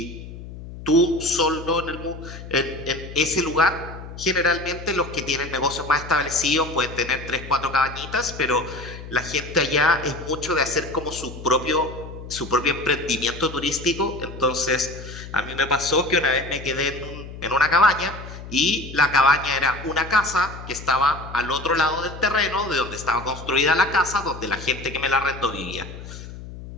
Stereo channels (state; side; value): noise; left; hum, 12 dB below the sound